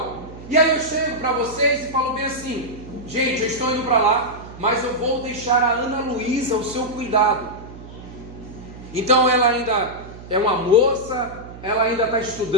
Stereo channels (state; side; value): noise; right; hum, 15 dB below the sound